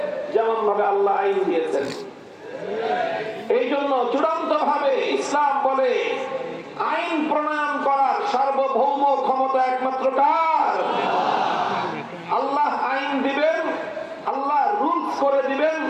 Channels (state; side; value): identical; both; correlation 1.00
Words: যেমন ভাবে আল্লাহ আইন দিয়েছেন। এই জন্য চূড়ান্ত ভাবে ইসলাম বলে আইন প্রণয়ন করার সার্বভৌম ক্ষমতা একমাত্র কার? আল্লাহ আইন দিবেন, আল্লাহ রুলস করে দিবেন,